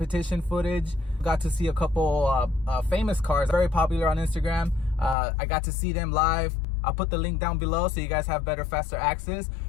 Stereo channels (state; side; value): drops out; right; at 5.2 s